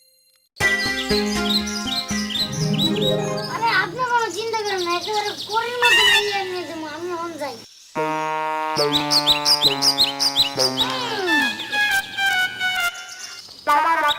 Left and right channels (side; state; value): both; identical; correlation 1.00